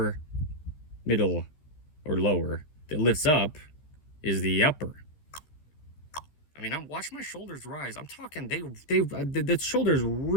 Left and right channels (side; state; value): right; late; 13 ms